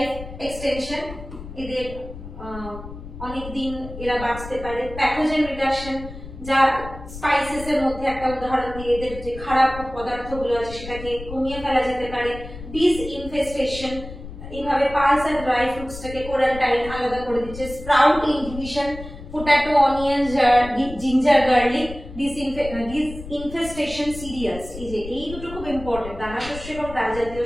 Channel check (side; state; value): left; noise; rumble, 12 dB below the sound